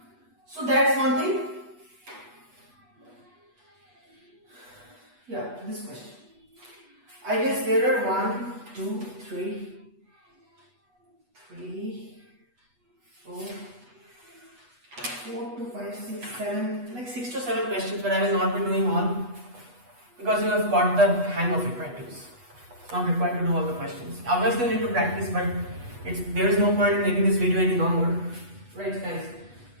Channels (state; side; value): late; left; 8.2 ms